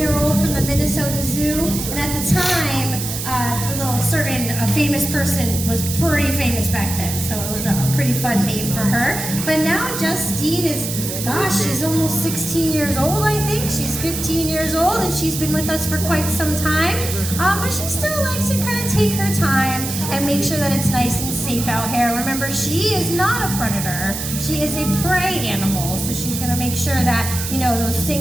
from the Minnesota Zoo, and at the time, a little certain famous person was pretty famous back then, so it was a pretty fun name for her. But now Justine is, gosh, she's almost 16 years old, I think. She's 15 years old, and she's been with us for quite some time. But she still likes to kind of take her time and make sure that it's nice and safe out here. Remember, she is not a predator. She is a prey animal, so she's going to make sure that, you know, those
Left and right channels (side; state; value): right; noise; hiss, 5 dB below the sound